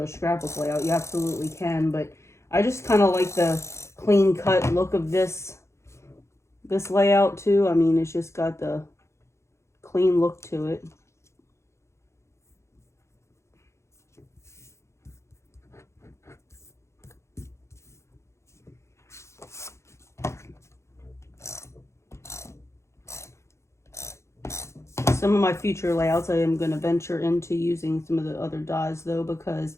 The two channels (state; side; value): late; right; 0.14 ms